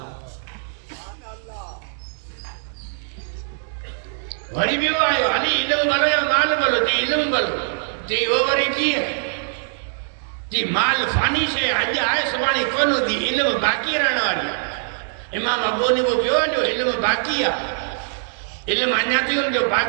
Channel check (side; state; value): left; silent; digital silence